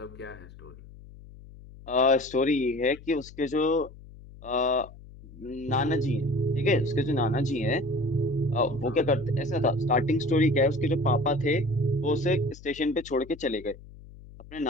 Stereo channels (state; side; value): noise; left; hum, 19 dB below the sound